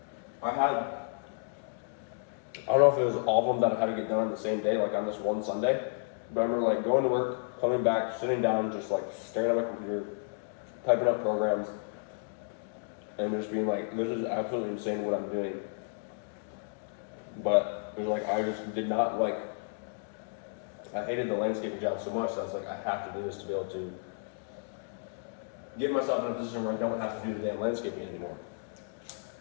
I don't know if it was all of them that I had to get done on the same day, like on this one Sunday, but I remember like going to work, coming back, sitting down, just like staring at my computer, typing up programs, and just being like, this is absolutely insane what I'm doing. But it was like, I just did not like, I hated the landscaping job so much that I was like, I have to do this to be able to get myself in a position where I don't have to do the damn landscaping anymore.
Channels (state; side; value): silent; right; digital silence